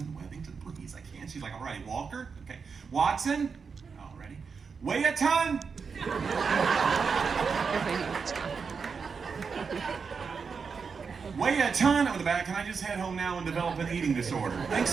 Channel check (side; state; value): left; quieter; 5.5 dB